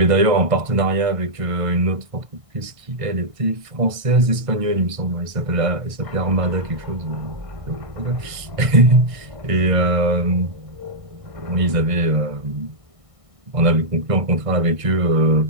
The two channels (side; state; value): left; late; 1.6 ms